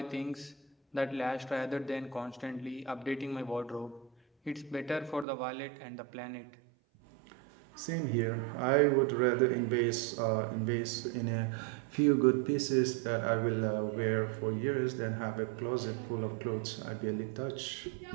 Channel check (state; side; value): drops out; left; at 5.2 s